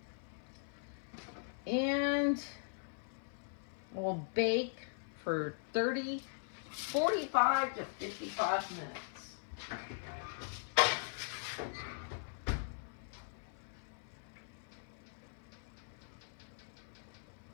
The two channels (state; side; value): silent; right; 51 dB below the other